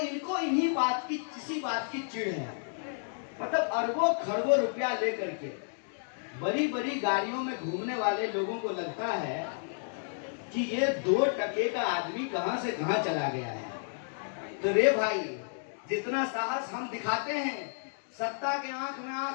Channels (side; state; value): right; silent; digital silence